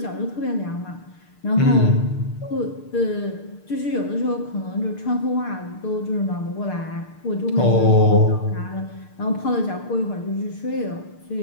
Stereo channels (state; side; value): late; right; 6.7 ms